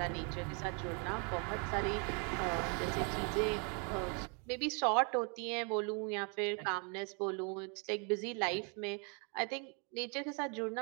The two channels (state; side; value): quieter; left; 36.1 dB